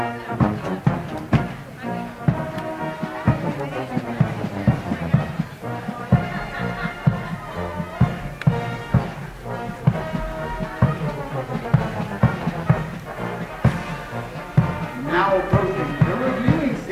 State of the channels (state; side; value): identical; both; correlation 1.00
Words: Now approaching the reviewing